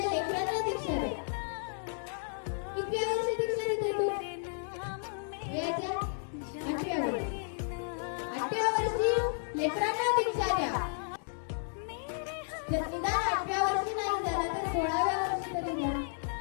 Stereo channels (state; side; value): silent; right; digital silence